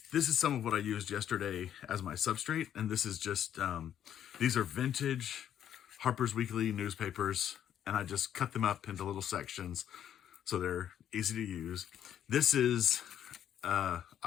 this is some of what I used yesterday as my substrate. And this is just, these are vintage Harper's Weekly newspapers. And I just cut them up into little sections so they're easy to use. This is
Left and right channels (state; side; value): quieter; right; 10.1 dB